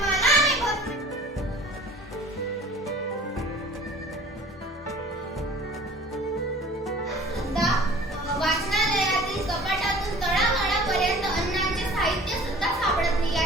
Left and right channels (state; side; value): normal; both; correlation 0.47